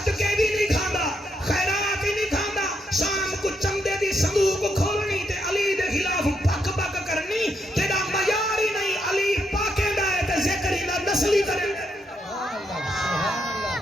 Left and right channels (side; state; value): both; normal; correlation 0.78